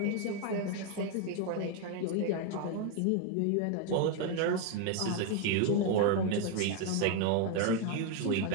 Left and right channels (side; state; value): both; different; correlation 0.01